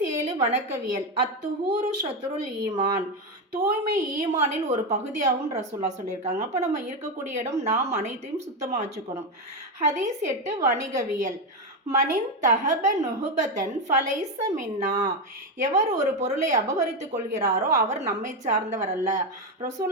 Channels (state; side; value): normal; both; correlation 0.10